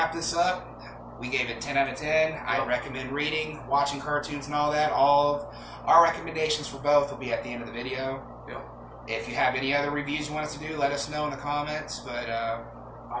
this up, we gave it 10 out of 10. I recommend reading, watching cartoons and all that. All of our recommendations for both will be at the end of the video. If you have any other reviews you want us to do, let us know in the comments. But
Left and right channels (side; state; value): both; identical; correlation 1.00